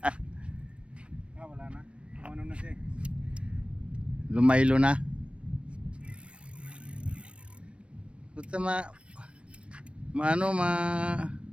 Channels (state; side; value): late; left; 0.060 ms